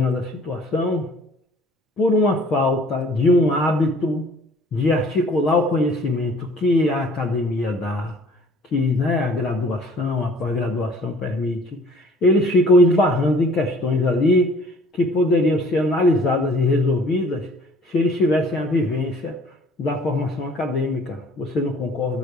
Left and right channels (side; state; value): both; normal; correlation 0.53